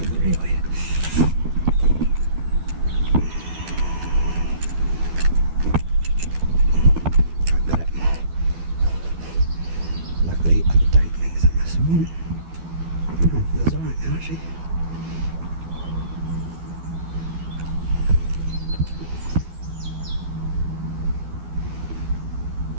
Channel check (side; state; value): left; late; 12 ms